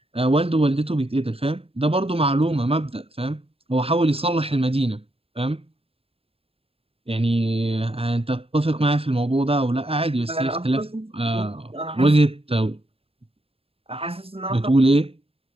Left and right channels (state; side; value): late; left; 0.28 ms